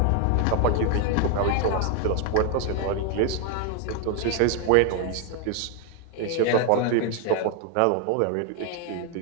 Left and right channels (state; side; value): different; both; correlation 0.01